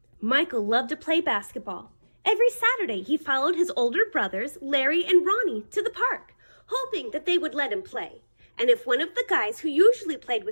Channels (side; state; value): both; inverted; correlation -1.00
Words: Michael loved to play basketball. Every Saturday he followed his older brothers, Larry and Ronnie, to the park, hoping that they would let him play. And if one of the guys who usually played